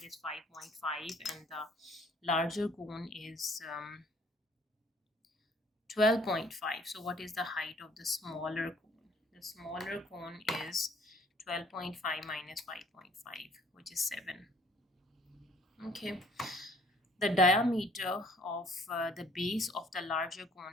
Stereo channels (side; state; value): both; normal; correlation 0.58